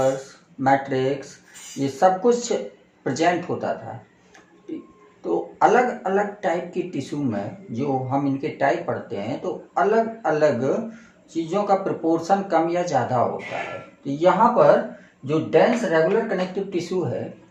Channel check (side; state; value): both; identical; correlation 1.00